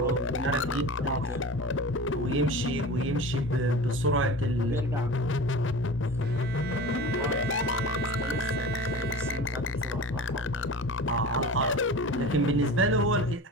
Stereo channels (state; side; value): normal; both; correlation 0.35